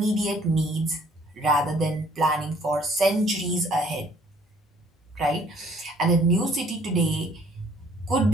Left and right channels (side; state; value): both; normal; correlation 0.59